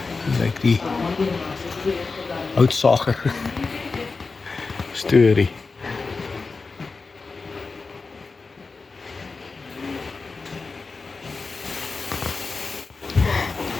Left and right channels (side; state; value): right; quieter; 4.2 dB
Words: lyk die houtsager storie.